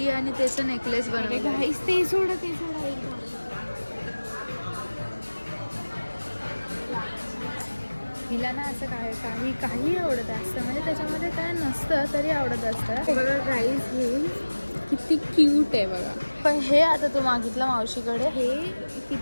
आणि त्याचं नेकलेस बनवलं. घाईस ते सोडा हिला ना असं काही आवडत असतं, म्हणजे त्याच्यामध्ये काय नसतं तरी आवडत असतं. बघा गाईस, हे किती क्यूट आहे बघा. पण हे आता तू मागितलं मावशीकडे, हे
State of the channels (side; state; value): both; inverted; correlation -1.00